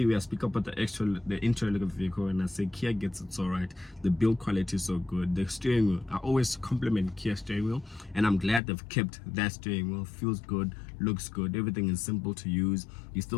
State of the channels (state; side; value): drops out; right; at 8.6 s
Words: where I speak about the interior look of the vehicle, and I say Kia gets it so right. The build quality is so good. The steering wheel, I always compliment Kia steering wheel, and I'm glad they've kept that steering wheel. Feels good, looks good, everything is simple to use. You